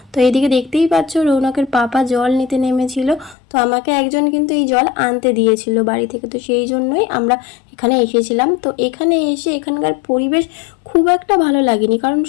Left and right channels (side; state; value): right; drops out; at 3.4 s